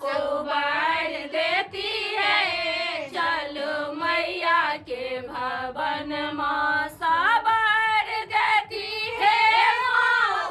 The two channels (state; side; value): identical; both; correlation 1.00